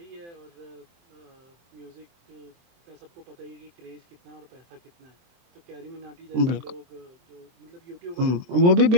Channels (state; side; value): late; left; 23 ms